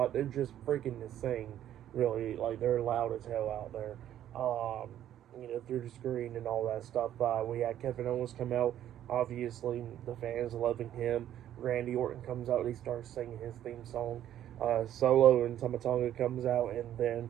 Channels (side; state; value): left; quieter; 11.4 dB